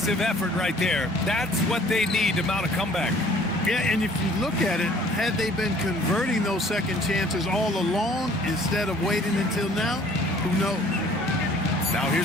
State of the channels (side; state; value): both; normal; correlation 0.55